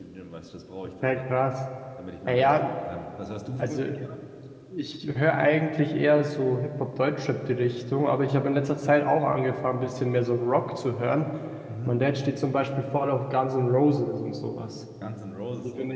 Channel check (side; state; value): both; identical; correlation 1.00